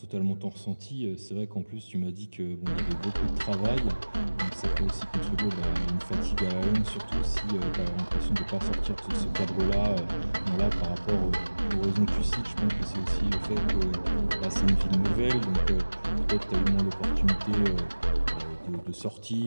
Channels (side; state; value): both; inverted; correlation -1.00